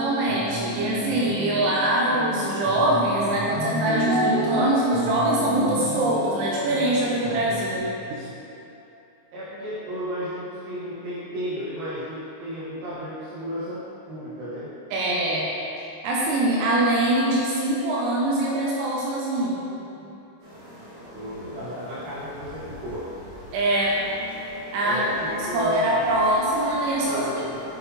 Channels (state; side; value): late; left; 25 ms